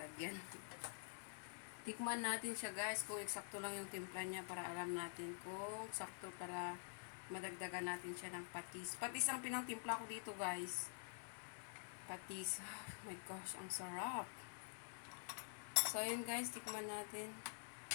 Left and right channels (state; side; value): silent; right; digital silence